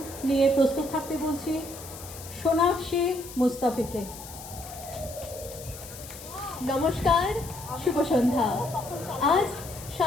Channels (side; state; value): left; noise; hiss, 14 dB below the sound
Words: নিয়ে প্রস্তুত থাকতে বলছি সোনাক্ষী মুস্তাফিকে। নমস্কার, শুভ সন্ধ্যা। আজ